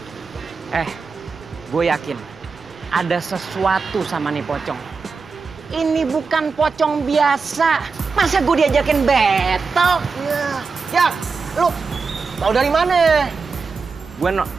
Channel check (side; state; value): left; quieter; 4.8 dB